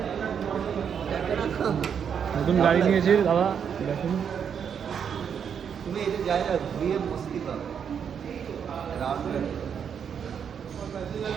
নতুন গাড়ি নিয়েছে দাদা, দেখুন। তুমি এই যে জায়গা ঘুরিয়ে মস্তি পাবে।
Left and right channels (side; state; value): left; quieter; 7.6 dB